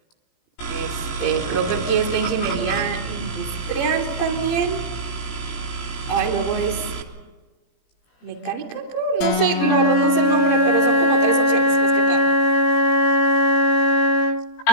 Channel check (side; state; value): right; late; 17 ms